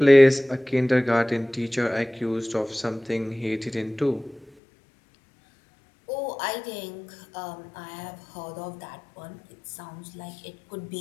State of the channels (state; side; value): drops out; right; at 4.5 s